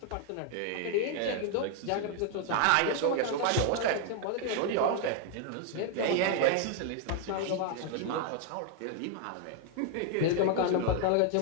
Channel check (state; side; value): different; both; correlation 0.00